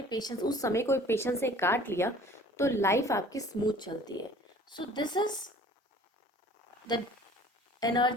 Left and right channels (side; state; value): both; normal; correlation 0.49